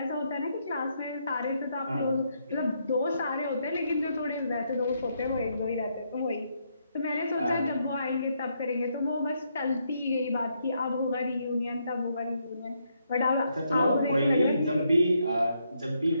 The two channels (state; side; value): inverted; both; correlation -0.76